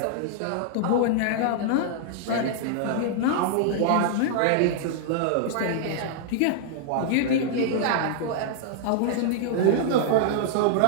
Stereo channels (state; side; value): different; both; correlation -0.01